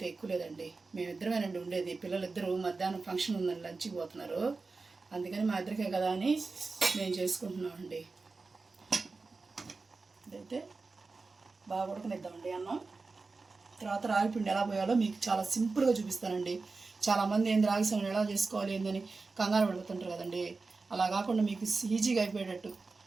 ఎక్కువ లేదండి. మేమిద్దరమేనండి ఉండేది. పిల్లలిద్దరూ మధ్యాహ్నం ఫంక్షన్ ఉందని లంచ్కి పోతున్నారు, అందుకని మా ఇద్దరికే కదా అని మేము చేసుకుంటున్నామండి. ఇదైతే బాగా ఉడకనిద్దామండి అన్నం. తర్వాత రాగి పిండి ఎలా పోయాలో మీకు చాలా సింపుల్గా చూపిస్తానండి. చాలామంది ఏంది రాగి సంగటి ఎలా చేసుకోవాలి ఏందని కంగారు పడుతుంటారు కదండి. అలా కాకుండా మీకు ఈజీగా అయిపోయేటట్టు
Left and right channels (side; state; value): left; quieter; 4.0 dB